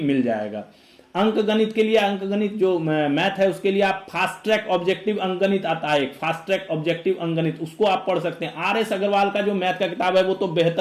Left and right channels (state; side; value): identical; both; correlation 1.00